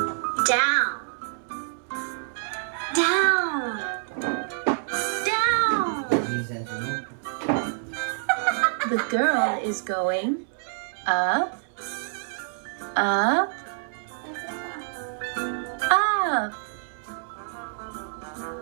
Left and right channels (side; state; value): left; silent; 60 dB below the other